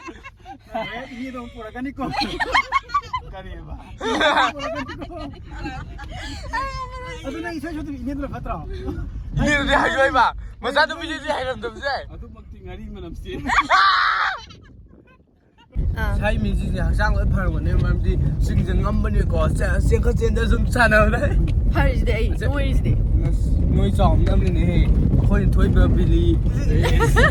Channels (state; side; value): identical; both; correlation 1.00